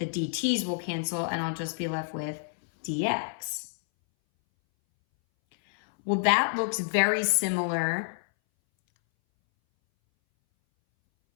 dt's will cancel and I'll just be left with dx. Well, that looks very similar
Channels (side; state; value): right; silent; 59 dB below the other